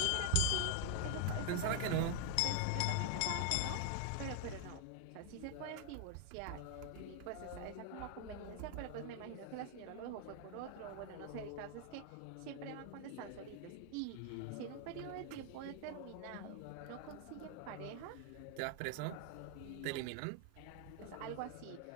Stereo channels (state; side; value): different; both; correlation 0.00